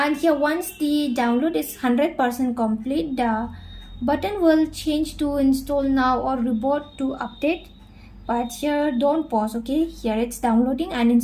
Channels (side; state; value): both; identical; correlation 1.00